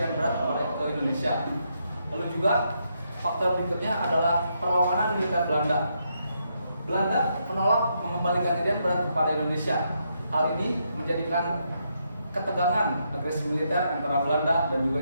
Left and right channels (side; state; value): both; inverted; correlation -0.79